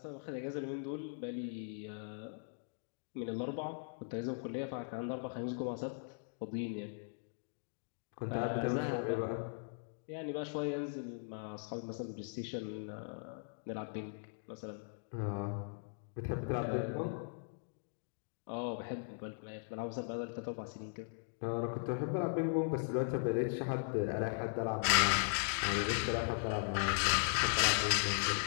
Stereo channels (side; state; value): right; silent; digital silence